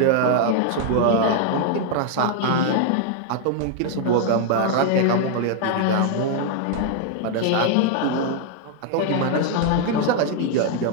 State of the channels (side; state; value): both; different; correlation 0.00